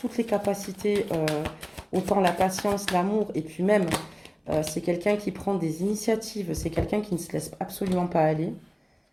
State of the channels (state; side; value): identical; both; correlation 1.00